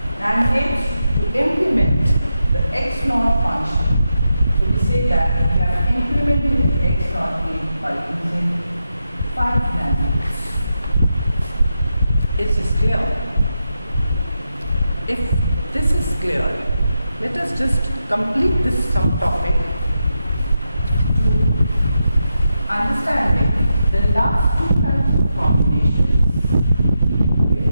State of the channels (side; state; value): both; inverted; correlation -0.86